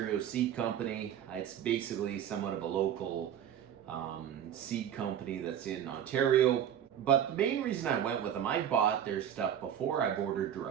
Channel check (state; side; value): quieter; left; 9.7 dB